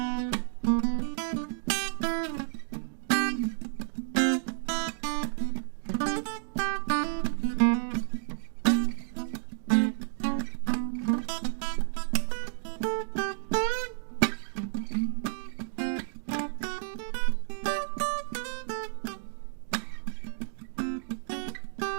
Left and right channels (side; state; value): left; silent; digital silence